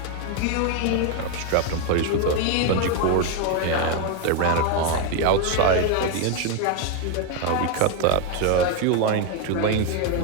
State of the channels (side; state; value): both; different; correlation 0.01